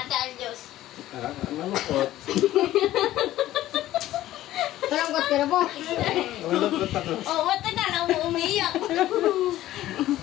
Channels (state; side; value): quieter; right; 14.5 dB